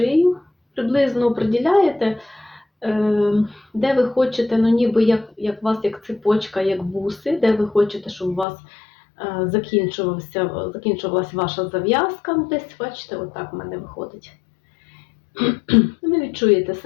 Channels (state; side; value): drops out; right; at 8.5 s